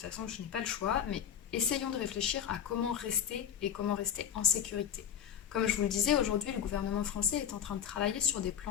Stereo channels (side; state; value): right; quieter; 8.9 dB